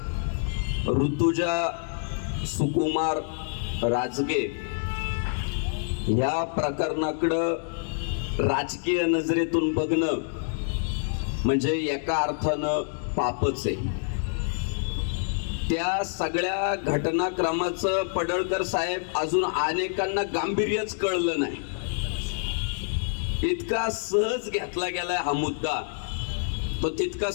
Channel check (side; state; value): right; silent; digital silence